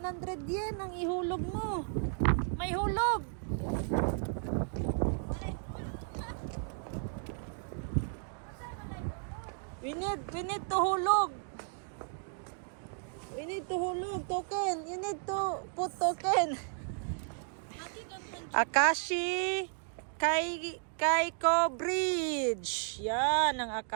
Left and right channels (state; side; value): silent; left; 55 dB below the other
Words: yen ang ihulog mo. May hulog. We need to hulog. We need to hulog token. You need to put token. Akashi Kaiko Bridge. Yan ang